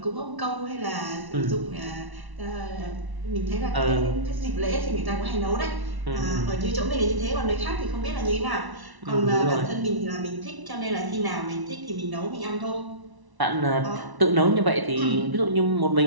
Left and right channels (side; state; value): left; late; 1.0 ms